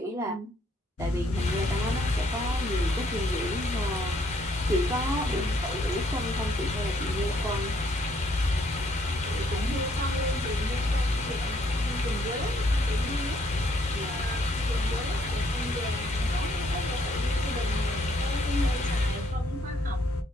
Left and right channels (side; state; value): both; normal; correlation 0.68